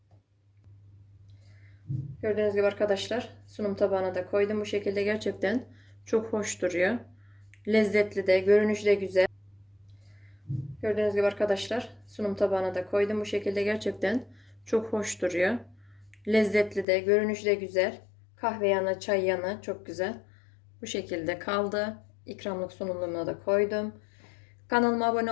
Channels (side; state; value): right; drops out; at 16.9 s